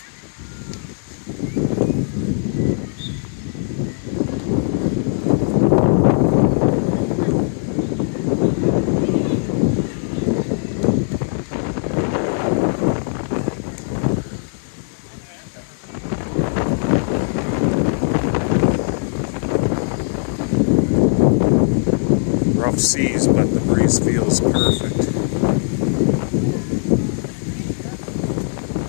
Rough seas, but the breeze feels perfect.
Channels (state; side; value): silent; right; digital silence